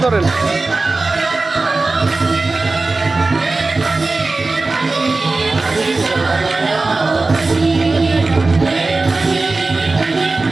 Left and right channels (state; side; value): quieter; left; 3.5 dB